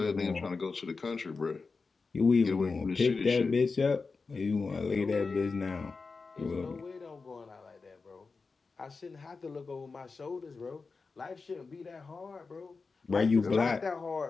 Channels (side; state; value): right; quieter; 4.4 dB